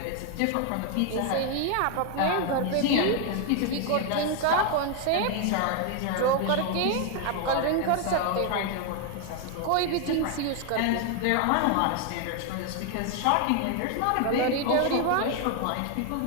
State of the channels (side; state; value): both; different; correlation 0.01